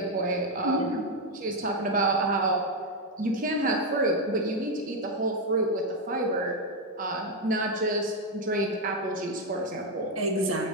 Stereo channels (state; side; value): normal; both; correlation 0.04